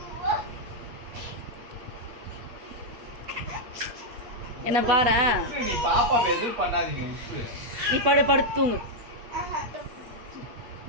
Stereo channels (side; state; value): left; late; 8.2 ms